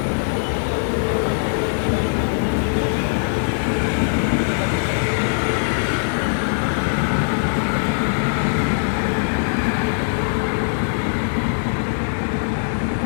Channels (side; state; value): right; silent; 65 dB below the other